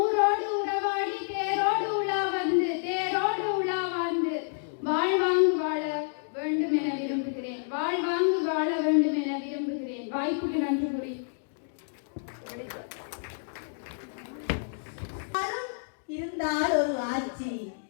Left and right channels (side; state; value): right; silent; digital silence